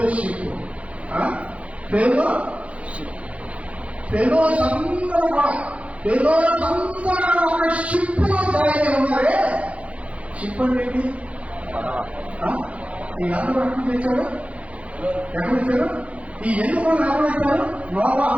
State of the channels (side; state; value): left; late; 0.064 ms